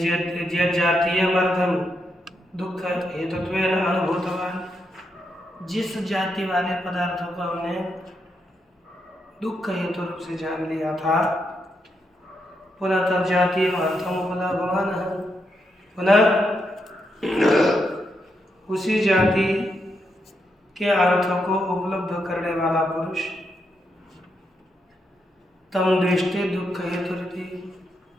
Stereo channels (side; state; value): both; normal; correlation 0.82